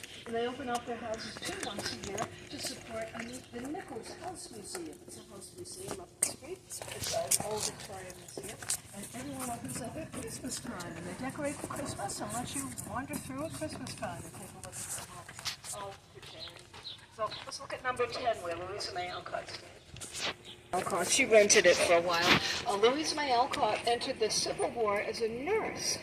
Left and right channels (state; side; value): identical; both; correlation 1.00